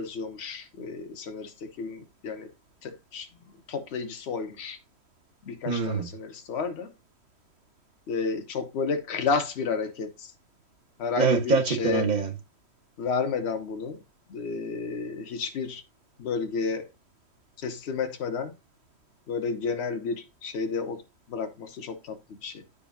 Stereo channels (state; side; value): late; right; 3.1 ms